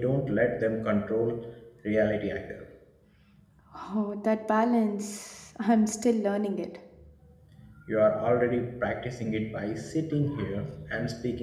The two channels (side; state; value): both; identical; correlation 1.00